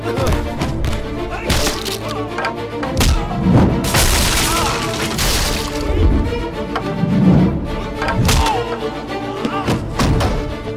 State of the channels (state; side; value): identical; both; correlation 1.00